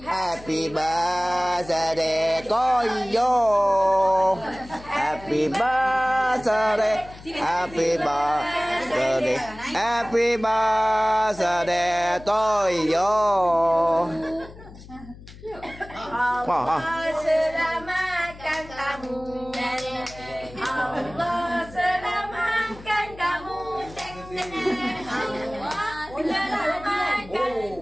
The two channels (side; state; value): left; noise; hum, 18 dB below the sound